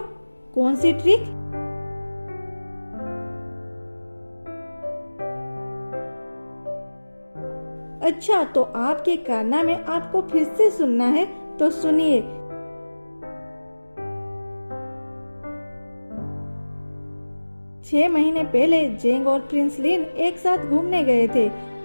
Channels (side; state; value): both; inverted; correlation -1.00